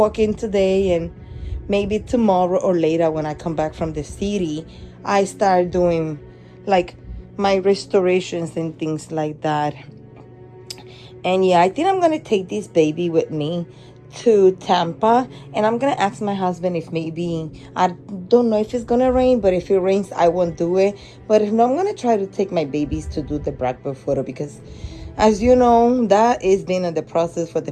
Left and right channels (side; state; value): both; identical; correlation 1.00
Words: in today, and maybe tomorrow or later when I come back from the city, I start doing like my restorations and things like that. And yeah, I think I'm gonna take this baby with me to Tampa, and I'm gonna ask my husband if maybe, I don't know if it's gonna rain, but if it rains I won't do it. But if not, I'm gonna try to take my babies to do the Blackbird photo, because as you know, that has been in the process for the